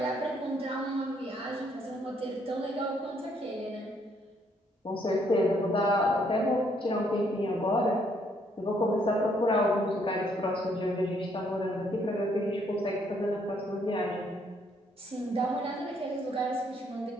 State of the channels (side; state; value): both; normal; correlation 0.69